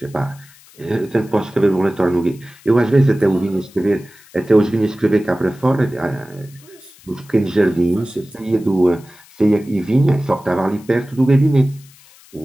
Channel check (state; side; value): noise; left; hiss, 25 dB below the sound